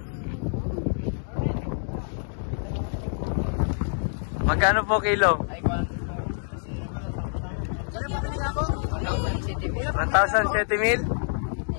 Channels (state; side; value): silent; right; digital silence